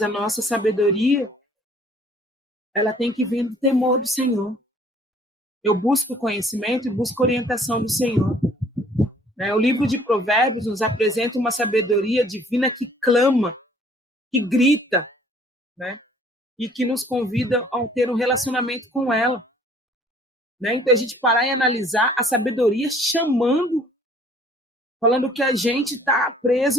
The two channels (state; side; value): normal; both; correlation 0.57